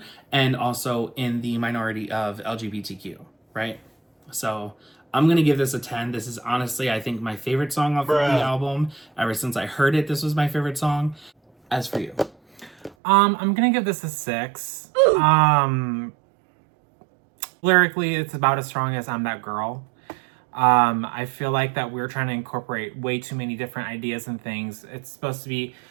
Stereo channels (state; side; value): drops out; left; at 13.0 s